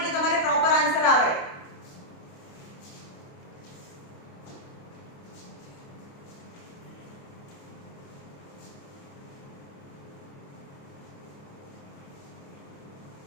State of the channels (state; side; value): late; right; 29 ms